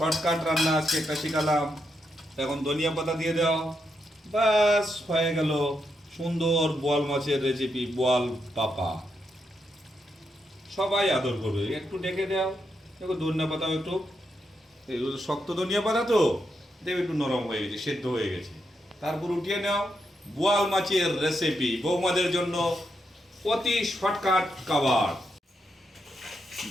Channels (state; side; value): normal; both; correlation 0.82